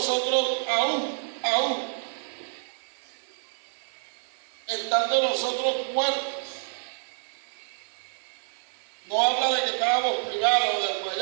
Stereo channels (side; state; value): left; silent; digital silence